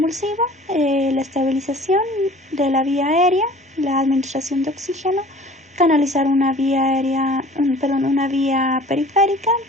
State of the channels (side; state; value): both; normal; correlation 0.47